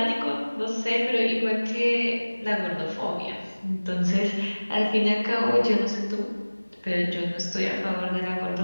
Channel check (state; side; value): inverted; both; correlation -1.00